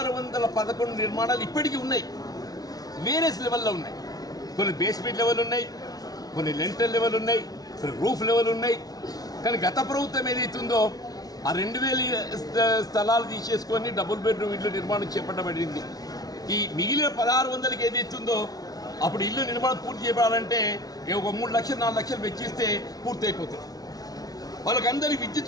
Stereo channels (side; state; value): right; late; 0.18 ms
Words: నిర్మాణాలు ఇప్పటికీ ఉన్నాయి. వేరియస్ లెవెల్లో ఉన్నాయి. కొన్ని బేస్మెంట్ లెవెల్ ఉన్నాయి, కొన్ని లెంటర్ లెవెల్ ఉన్నాయి, కొన్ని రూఫ్ లెవెల్ ఉన్నాయి. కానీ గత ప్రభుత్వం ఏదైతుందో ఆ 2000 స్థలాలు తీసేసుకొని డబుల్ బెడ్రూమ్ ఇల్లు నిర్మాణం చేపట్టబడింది. ఈ మిగిలిన 1600కి ఏదైతుందో అప్పుడు ఇల్లు నిర్మాణం పూర్తి చేయబడాలంటే ఒక 3 లక్షలు 4 లక్షలు వెచ్చిస్తే పూర్తి అయిపోతుంది. వాళ్ళకందరికీ